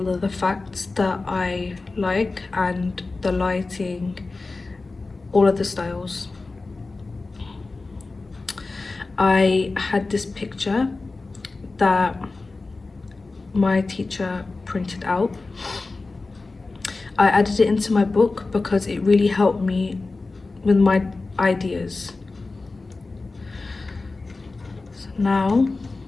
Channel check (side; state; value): right; quieter; 3.6 dB